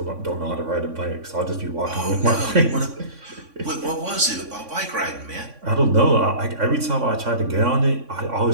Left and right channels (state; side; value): late; left; 3.6 ms